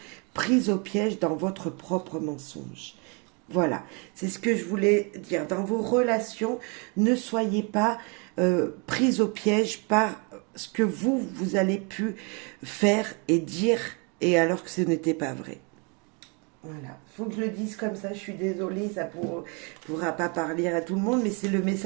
prise au piège dans votre propre mensonge. Voilà, c'est ce que je voulais dire. Dans vos relations, ne soyez pas prise au piège par ce que vous allez pu faire et dire, et alors que ce n'était pas vrai. Voilà, faut que je le dise comme ça, je suis désolée, ça pourra pas parler à tout le monde, mais c'est le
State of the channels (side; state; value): left; quieter; 33.5 dB